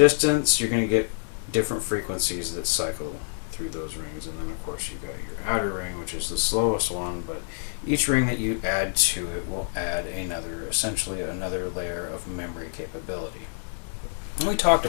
you're going to get different frequencies that cycle through those rings, and then of course you've got your outer ring, which is the slowest one, but each ring that you add to it will add essentially another layer of memory capability. And we talked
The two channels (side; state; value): right; silent; 57 dB below the other